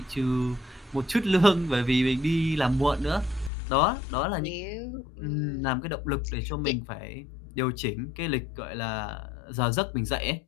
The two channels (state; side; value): drops out; right; at 3.5 s